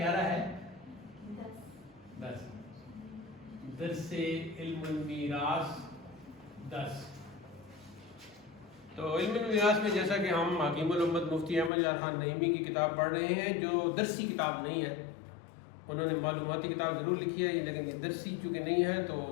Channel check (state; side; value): drops out; right; at 11.7 s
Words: ہے 10 درس علم المیراث 10۔ تو علم المیراث میں جیسا کہ ہم حکیم الامت مفتی احمد جان خان نعیمی کی کتاب پڑھ رہے ہیں، جو درسی کتاب نہیں ہے۔ انہوں نے معلوماتی کتاب ضرور لکھی ہے، لیکن یہ درسی چونکہ نہیں ہے، تو